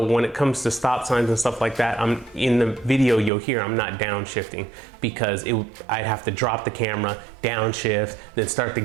when it comes to stop signs and stuff like that, in the video you'll hear I'm not downshifting because I'd have to drop the camera, downshift, then start the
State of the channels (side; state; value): left; drops out; at 3.3 s